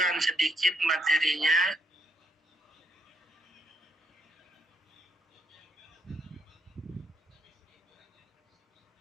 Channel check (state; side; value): normal; both; correlation 0.74